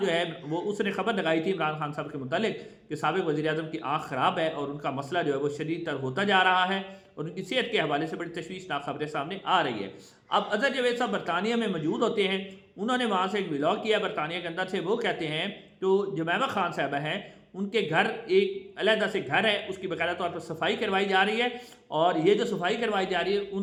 جو ہے وہ اس نے خبر لگائی تھی عمران خان صاحب کے متعلق کہ سابق وزیر اعظم کی آنکھ خراب ہے اور ان کا مسئلہ جو ہے وہ شدید تر ہوتا جا رہا ہے اور ان کی صحت کے حوالے سے بڑی تشویشناک خبریں سامنے آ رہی ہے۔ اب اظہر جاوید صاحب برطانیہ میں موجود ہوتے ہیں، انہوں نے وہاں سے ایک ولاگ کیا برطانیہ کے اندر سے۔ وہ کہتے ہیں تو جمیمہ خان صاحبہ ہیں، ان کے گھر ایک علیحدہ سے گھر ہے، اس کی باقاعدہ طور پر صفائی کروائی جا رہی ہے اور یہ جو صفائی کروائی جا رہی ہے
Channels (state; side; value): identical; both; correlation 1.00